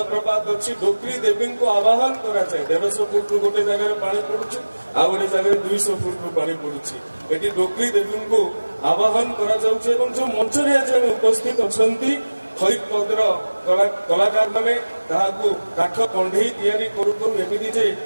अच्छी डोकरी देवी को आवाहन करा जाए 150 फुट गोटे जगह पानी पड़ुछि आ गोटे जगह 200 फुट पानी पड़ुछि। एटी डोकरी देवी को आवाहन करा जाउछि एवं जो मंच रे आज उपस्थित अछंती खैत पदर कलाकार माने ताहाकू काठ कंढई तैयारी करू करू एमिति जे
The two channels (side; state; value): both; inverted; correlation -1.00